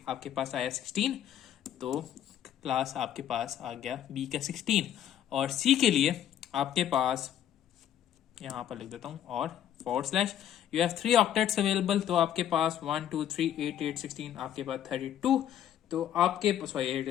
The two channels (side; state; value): right; quieter; 10.6 dB